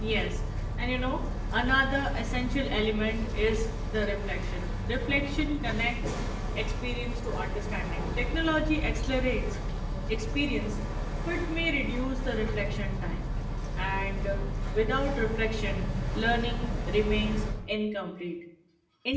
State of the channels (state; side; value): identical; both; correlation 1.00